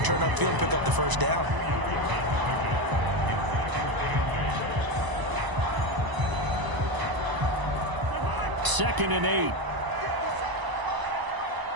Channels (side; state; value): left; late; 1.0 ms